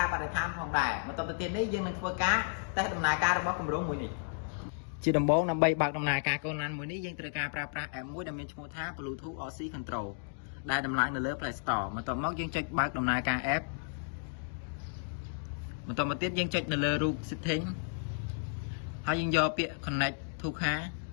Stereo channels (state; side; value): silent; right; digital silence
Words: បរិស្ថានផងដែរបន្ទាប់ទៅទៀតនេះយើងនឹងធ្វើការតេស្តដំណើរការរបស់គម្រោងមួយនេះជាដំបូងដើម្បីបើកដំណើរការកូនឡានមួយនេះយើងត្រូវការប្រើប្រាស់ app មួយដែលមានឈ្មោះថា Bluetooth RC Control ដែលដំឡើងនៅលើ Play Store បន្ទាប់មកយើងចុចបើកដំណើរការ app បន្តមកទៀតយើងចុចនៅលើរូប setting ហើយយើងយកពាក្យ connect to car